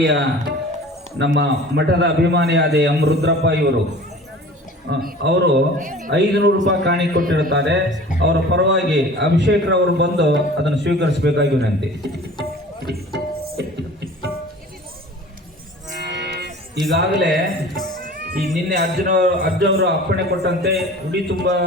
ನಮ್ಮ ಮಠದ ಅಭಿಮಾನಿಯಾದ ಎಂ ರುದ್ರಪ್ಪ ಇವರು ಅವರು 500 ರೂಪಾಯಿ ಕಾಣಿ ಕೊಟ್ಟಿರುತ್ತಾರೆ. ಅವರ ಪರವಾಗಿ ಅಭಿಷೇಕ್ ರವರು ಬಂದು ಅದನ್ನು ಸ್ವೀಕರಿಸಬೇಕಾಗಿ ವಿನಂತಿ. ಈಗಾಗಲೇ ಈ ನಿನ್ನೆ ಅರ್ಜುನವರು ಅಪ್ಪಣೆ ಕೊಟ್ಟಂತೆ ಉಡಿ ತುಂಬ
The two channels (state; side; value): normal; both; correlation 0.43